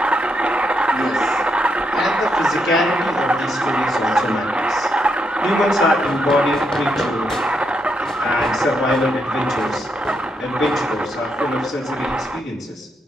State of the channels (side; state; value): both; normal; correlation 0.79